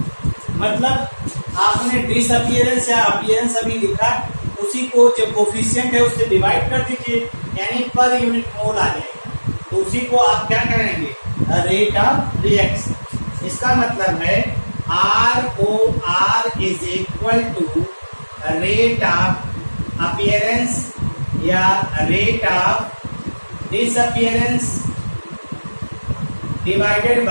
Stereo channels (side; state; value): both; inverted; correlation -1.00